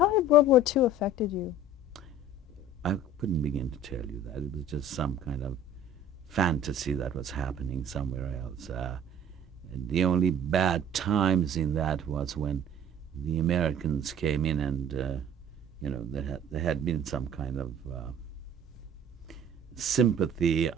had World War II affected you? I couldn't begin to tell you that. It was just some kind of fantasy that was happening somewhere else. The only bad times in that was when the Americans came in and, there had been some kind of sympathy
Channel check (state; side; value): normal; both; correlation 0.46